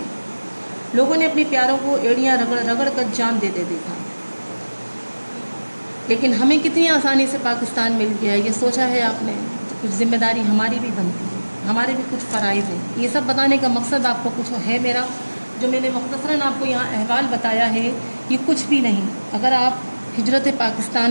لوگوں نے اپنے پیاروں کو ایڑیاں رگڑ رگڑ کر جان دیتے دیکھا. لیکن ہمیں کتنی آسانی سے پاکستان مل گیا ہے، یہ سوچا ہے آپ نے؟ کچھ ذمہ داری ہماری بھی بنتی ہے، ہمارے بھی کچھ فرائض ہیں. یہ سب بتانے کا مقصد آپ کو کچھ ہے میرا، جو میں نے مختصراً آپ کو یہاں احوال بتایا ہے یہ کچھ بھی نہیں. اگر آپ ہجرت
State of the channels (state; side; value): inverted; both; correlation -1.00